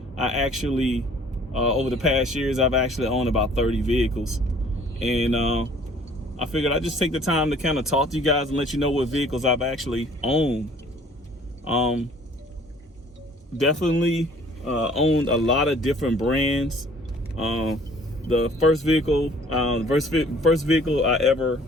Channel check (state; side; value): normal; both; correlation 0.54